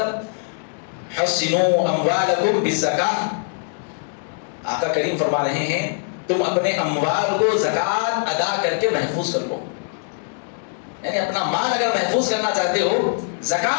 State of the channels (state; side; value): silent; right; digital silence